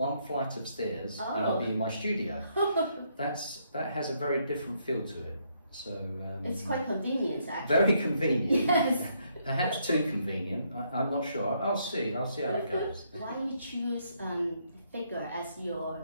flight of stairs, and I'll be in my studio. That has a very different feel to it. So it's quite convenient, actually. Very convenient. Yes. Perhaps too convenient. I'm not sure. I'll see how it goes. Why you choose figure as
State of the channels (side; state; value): both; inverted; correlation -0.73